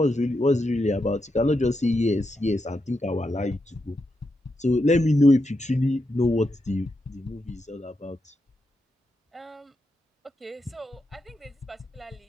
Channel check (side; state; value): both; normal; correlation 0.85